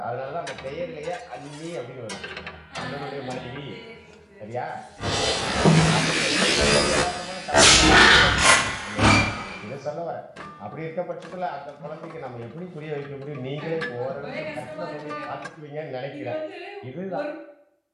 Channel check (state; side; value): identical; both; correlation 1.00